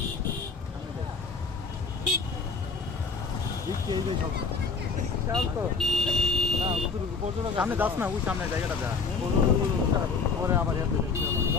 সামনে যাস না ওই সামনে জায়গাটা যা পরে আবার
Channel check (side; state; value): right; quieter; 4.8 dB